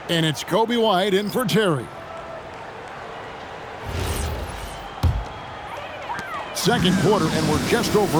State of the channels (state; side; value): identical; both; correlation 1.00